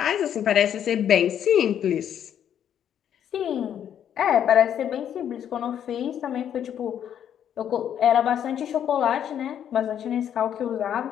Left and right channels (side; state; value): right; quieter; 9.5 dB